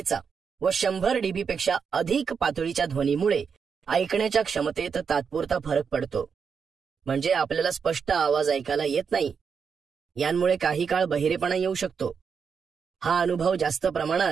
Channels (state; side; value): quieter; left; 6.2 dB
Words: व 100 डीबी पेक्षा अधिक पातळीच्या ध्वनीमुळे ऐकण्याच्या क्षमतेत तात्पुरता फरक पडतो. म्हणजे आपल्याला स्पष्ट आवाज ऐकायला येत नाही. यांमुळे काही काळ बहिरेपणा येऊ शकतो. हा अनुभव जास्त